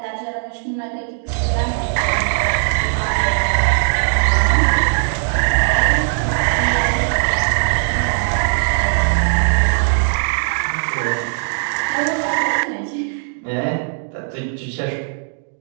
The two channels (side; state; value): left; silent; digital silence